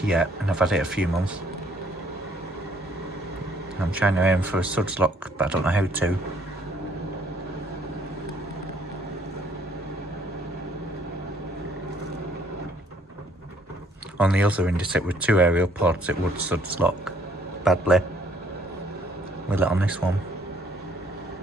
yet, and I've had it a few months. I'm trying to aim for a suds lock, but I don't know how to. On the other Indesit with 2 aerial pods, it would suds lock badly. Will it on this one?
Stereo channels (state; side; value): normal; both; correlation 0.63